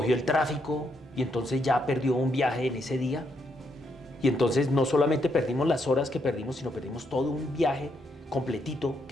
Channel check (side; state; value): both; normal; correlation 0.77